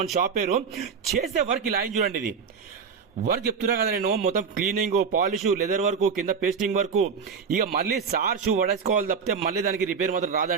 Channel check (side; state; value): left; quieter; 6.1 dB